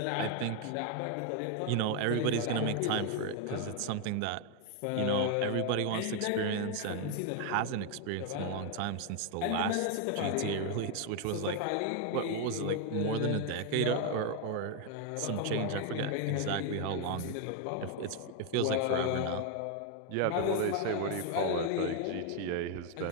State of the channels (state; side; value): different; both; correlation 0.01